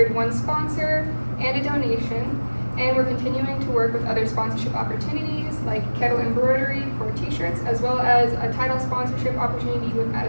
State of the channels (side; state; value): both; inverted; correlation -1.00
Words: one sponsor and a donation, and we're continuing to work with other sponsorship opportunities like Kettle Embroidery for t-shirts, as well as a title sponsorship opportunity with